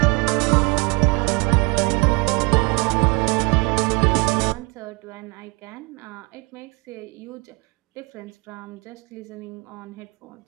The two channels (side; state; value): left; quieter; 28.2 dB